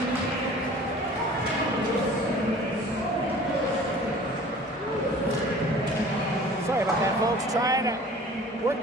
Sorry about that, folks. Trying to work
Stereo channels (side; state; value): both; normal; correlation 0.46